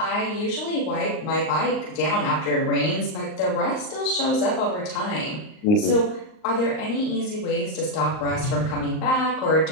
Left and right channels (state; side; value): late; right; 38 ms